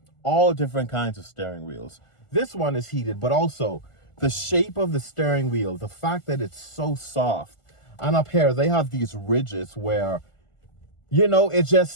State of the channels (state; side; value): late; right; 1.4 ms